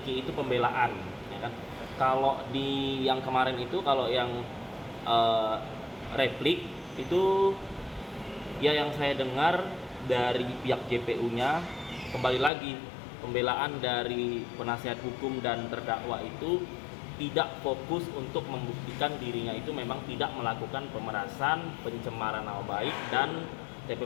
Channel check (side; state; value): right; drops out; at 12.5 s